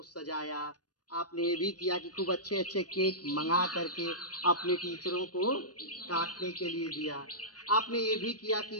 सजाया, आपने ये भी किया कि खूब अच्छे अच्छे केक मंगा करके अपने टीचरों को काटने के लिए दिया, आपने ये भी किया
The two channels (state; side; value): late; right; 0.69 ms